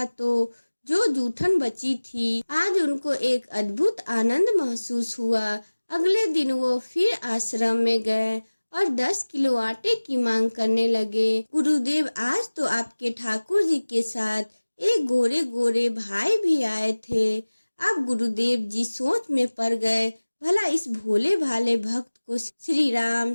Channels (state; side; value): inverted; both; correlation -1.00